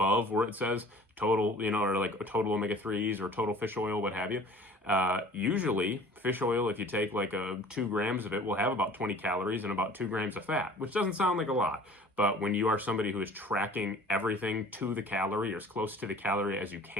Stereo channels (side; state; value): both; normal; correlation 0.47